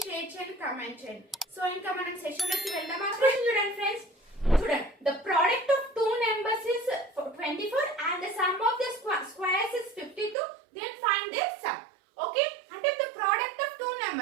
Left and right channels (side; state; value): left; drops out; at 10.4 s